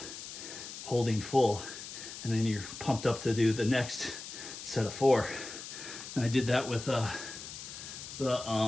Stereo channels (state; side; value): noise; left; hiss, 10 dB below the sound